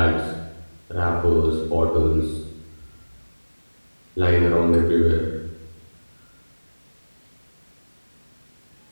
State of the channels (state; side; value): inverted; both; correlation -1.00